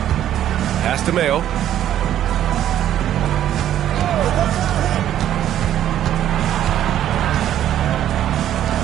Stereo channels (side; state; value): left; quieter; 11.3 dB